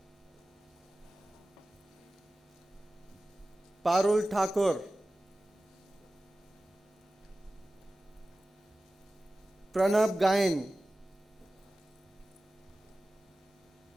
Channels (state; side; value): normal; both; correlation 0.96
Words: Parul Thakur, Pranab Gain,